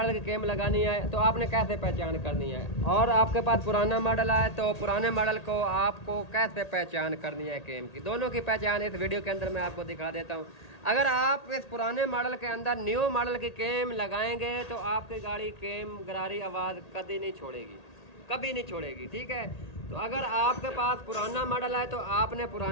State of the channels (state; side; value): late; right; 1.8 ms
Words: की केम लगानी है, तो आपने कैसे पहचान करनी है, और आपके पास पुराना मॉडल है तो पुराने मॉडल को आपको कैसे पहचान करनी है केम की। दोनों की पहचान इस वीडियो के अंदर मैं आपको दिखा देता हूँ। अगर आप इस पुराने मॉडल के अंदर न्यू मॉडल की केम लगाएंगे तो आपकी गाड़ी केम गरारी आवाज़ कभी नहीं छोड़ेगी, कभी नहीं छोड़ेगी, ठीक है। तो अगर आपके पास पुराना मॉडल है तो आपने